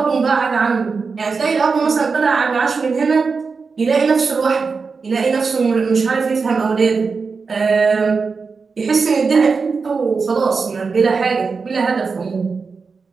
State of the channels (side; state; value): left; quieter; 4.9 dB